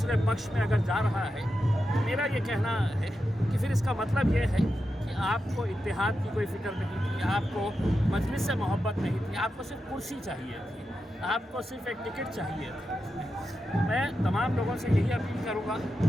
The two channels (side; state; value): both; normal; correlation 0.89